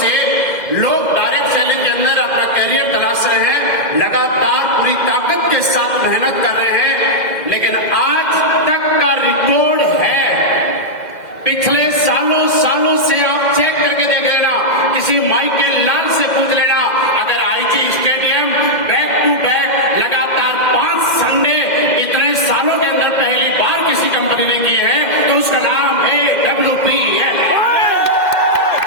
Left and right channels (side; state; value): right; late; 2.0 ms